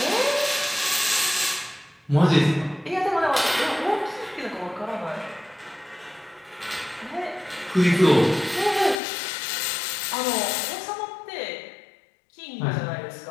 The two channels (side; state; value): right; drops out; at 9.0 s